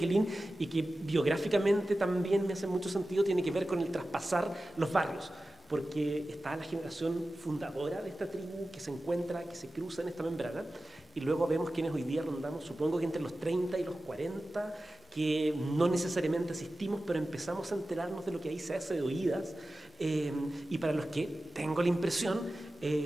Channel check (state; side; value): normal; both; correlation 0.95